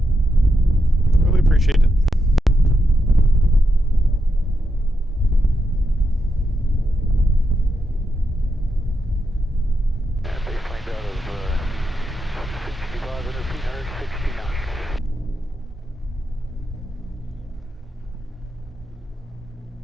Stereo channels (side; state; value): both; normal; correlation 0.85